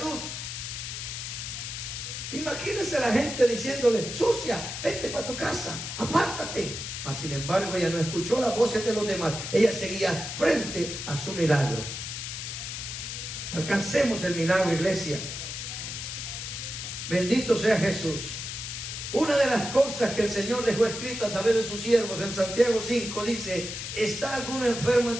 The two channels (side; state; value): left; noise; hiss, 6 dB below the sound